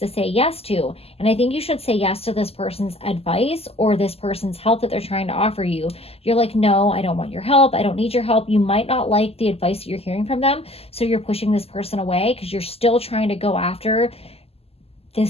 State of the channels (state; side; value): late; right; 0.29 ms